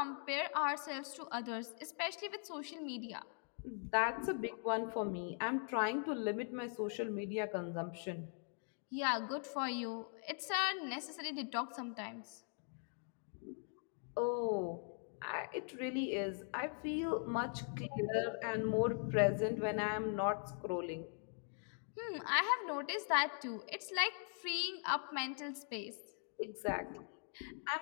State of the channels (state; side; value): silent; right; 50 dB below the other